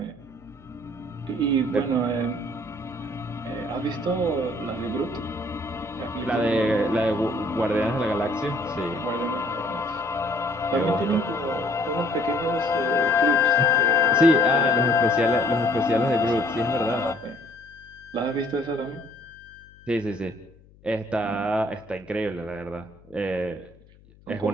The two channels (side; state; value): left; noise; hum, 27 dB below the sound